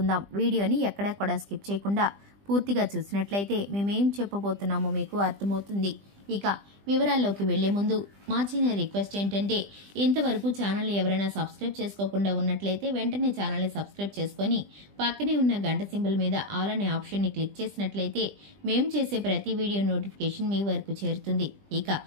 వీడియోని ఎక్కడా కూడా స్కిప్ చేయకుండా పూర్తిగా చూసినట్లయితే మేమేం చెప్పబోతున్నామో మీకు అర్థమవుతుంది. ఇక వివరాల్లోకి వెళ్లే ముందు మా చిన్న రిక్వెస్ట్ ఏంటంటే, ఇంతవరకు ఛానల్ని ఎవరైనా సబ్స్క్రైబ్ చేసుకోకుండా ఉన్నట్లయితే వెంటనే ఛానల్ని సబ్స్క్రైబ్ చేసుకుని పక్కనే ఉన్న గంట సింబల్ మీద ఆల్ అనే ఆప్షన్ని క్లిక్ చేసినట్లయితే మేము చేసే ప్రతి వీడియో నోటిఫికేషన్ మీ వరకు చేరుతుంది. ఇక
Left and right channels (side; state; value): left; late; 20 ms